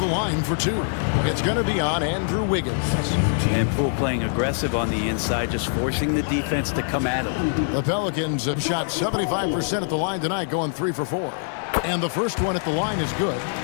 line for 2. It's going to be on Andrew Wiggins. And Poole playing aggressive on the inside, just forcing the defense to come at him. The Pelicans have shot 75% at the line tonight, going 3 for 4. And the first one at the line is good.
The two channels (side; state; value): right; silent; digital silence